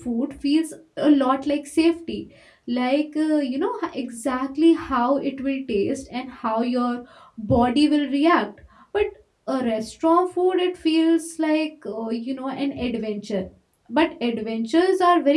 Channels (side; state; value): both; identical; correlation 1.00